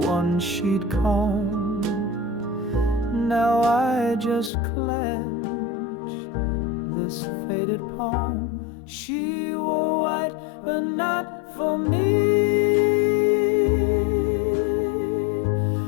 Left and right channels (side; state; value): right; drops out; at 4.5 s